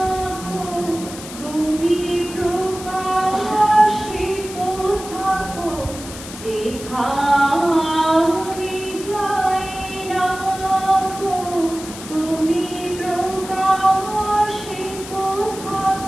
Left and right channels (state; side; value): noise; left; hiss, 13 dB below the sound